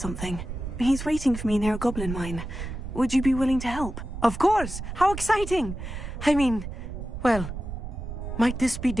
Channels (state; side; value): noise; right; rumble, 8 dB below the sound